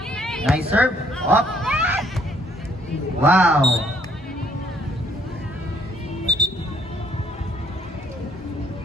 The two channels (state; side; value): normal; both; correlation 0.65